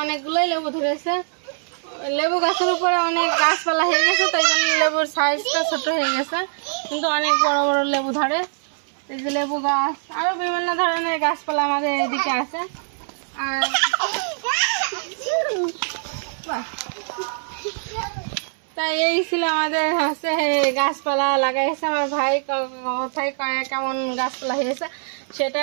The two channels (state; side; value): silent; left; 63 dB below the other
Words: অনেকগুলোই লেবু ধরেছে। লেবু গাছের উপরে অনেক গাছপালা হয়ে গেছে, তাই জন্য লেবুর সাইজটা ছোট হয়ে গেছে, কিন্তু অনেক বড় বড় লেবু ধরে। এই যে লেবু গাছ, আরো বিভিন্ন ধরনের গাছপালা আমাদের এদিকে আছে। আর তাই এই ছিল আমাদের হচ্ছে গাছপালা লাগাইছে আমার ভাই, কোথায় কেমন গাছপালা হয়েছে